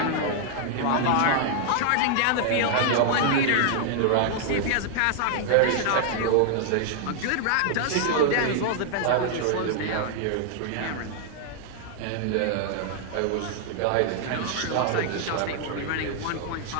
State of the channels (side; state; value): both; different; correlation 0.00